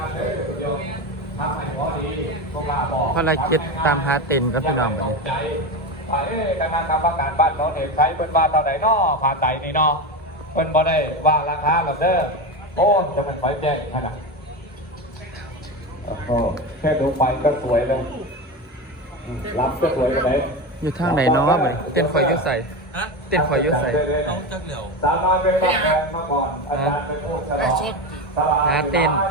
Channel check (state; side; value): normal; both; correlation 0.20